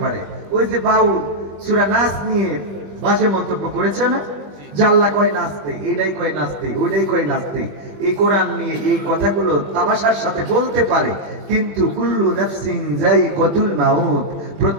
পারে। ওই যে বাউল সূরা নাস নিয়ে বাজে মন্তব্য করেছে না, যে আল্লাহ কয় নাচতে, এইটাই কয় নাচতে, ওইটাই কয় নাচতে। এই কোরআন নিয়ে এই কথাগুলো তামাশার সাথে বলতে পারে, কিন্তু কুল্লু নাফসিন যায়িকাতুল মাউত,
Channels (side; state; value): left; late; 21 ms